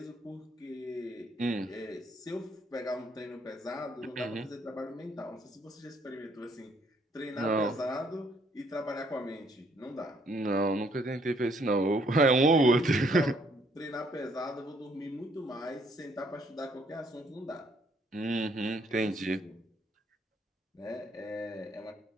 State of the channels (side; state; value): both; normal; correlation 0.67